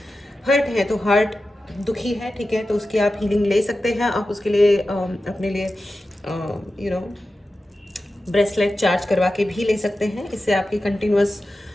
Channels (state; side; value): normal; both; correlation 0.93